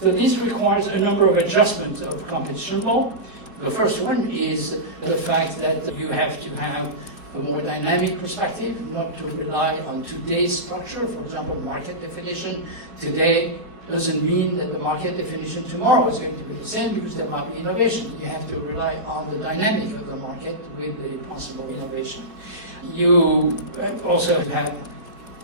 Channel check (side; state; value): left; late; 4.4 ms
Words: this requires a number of adjustments of competition law. The first one is the fact that you have to have a more dynamic perspective, not to rely on today's structure. For example, market definition today doesn't mean that the market definition tomorrow is going to be the same, because there might be innovation. You have to rely on the dynamic of the market with the possible innovation. You also have